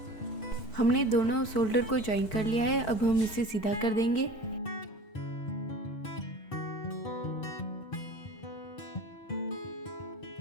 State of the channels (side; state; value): right; late; 4.6 ms